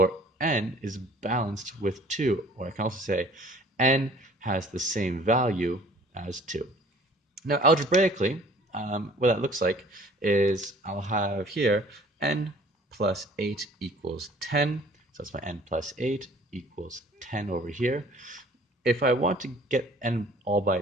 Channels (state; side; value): normal; both; correlation 0.52